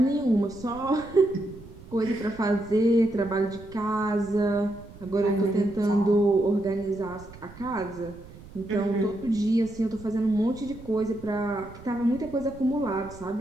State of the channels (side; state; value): right; noise; rumble, 18 dB below the sound